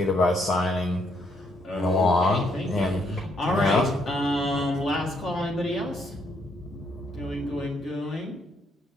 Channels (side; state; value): both; normal; correlation 0.73